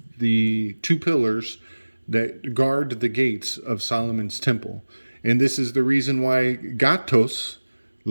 the two pillars that guard the gates of Solomon's temple. And this is the reason why gatos,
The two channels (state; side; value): inverted; both; correlation -1.00